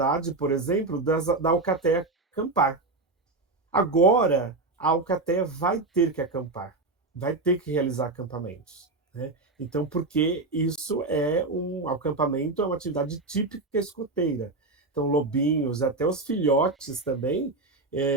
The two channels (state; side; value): quieter; left; 3.3 dB